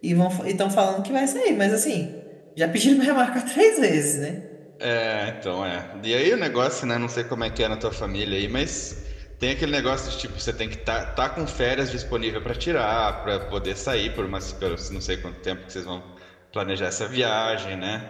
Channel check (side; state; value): both; identical; correlation 1.00